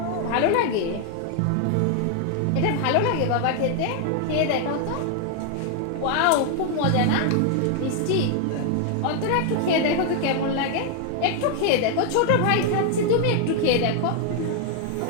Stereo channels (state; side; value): different; both; correlation 0.00